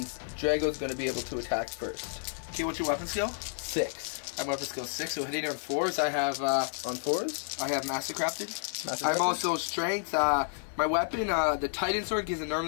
Drago's going to be able to attack first. Okay, what's your weapon skill? 6. I'm weapon skill 6, so hitting on 4s. I have on 4s? I have Mastercrafted. I'm also strength. My weapon, the Titan sword, gives it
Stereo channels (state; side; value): silent; right; digital silence